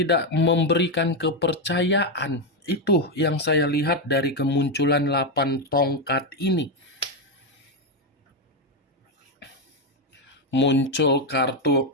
memberikan kepercayaan. Itu yang saya lihat dari kemunculan 8 tongkat ini. Muncul kartu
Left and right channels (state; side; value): normal; both; correlation 0.06